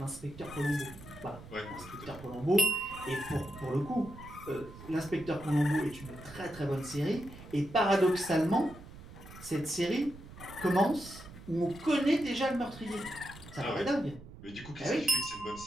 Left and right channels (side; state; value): right; noise; rumble, 16 dB below the sound